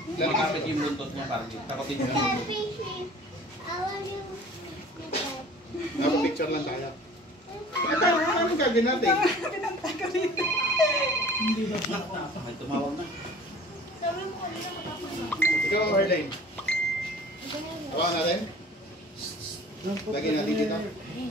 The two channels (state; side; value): normal; both; correlation 0.47